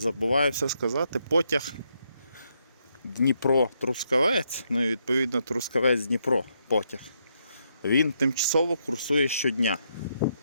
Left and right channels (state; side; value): inverted; both; correlation -0.77